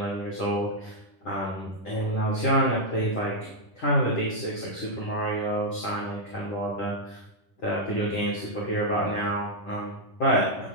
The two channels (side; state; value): right; late; 11 ms